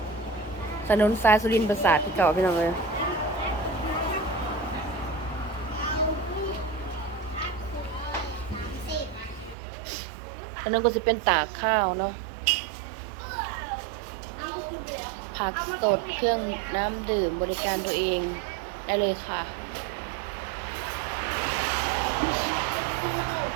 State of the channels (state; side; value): drops out; left; at 9.6 s